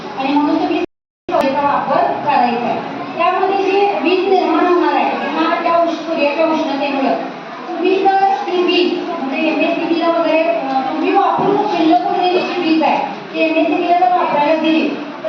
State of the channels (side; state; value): both; identical; correlation 1.00